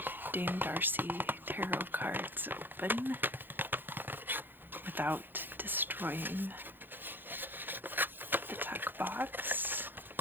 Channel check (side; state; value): left; late; 0.095 ms